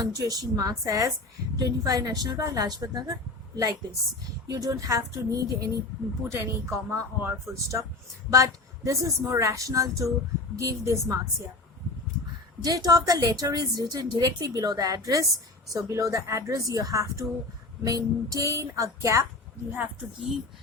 marks, as 25 National Park, Lajpat Nagar, like this. You don't have to put any comma or full stop, but this is more rational to give these marks here. Date of the letter is written directly below the address. So below the address you have to maintain a gap. You have to give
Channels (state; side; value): quieter; right; 3.0 dB